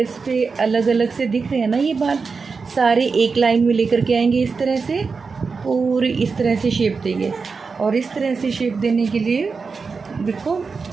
पे अलग अलग से दिख रहे हैं ना, ये बाल सारे एक लाइन में लेकर के आएंगे इस तरह से, पूरी इस तरह से शेप देंगे। और इस तरह से शेप देने के लिए देखो,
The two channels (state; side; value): quieter; left; 4.8 dB